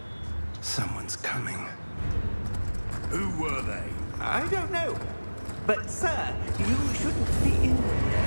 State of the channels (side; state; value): both; inverted; correlation -1.00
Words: Someone's coming. Who were they? I don't know. But, sir, you shouldn't be in